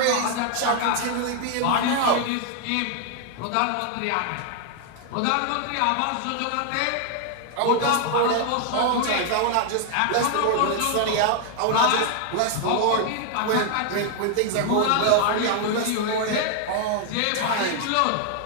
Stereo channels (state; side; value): different; both; correlation 0.00